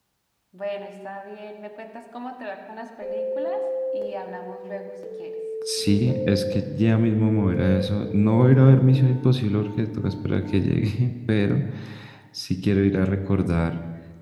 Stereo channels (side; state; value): both; identical; correlation 1.00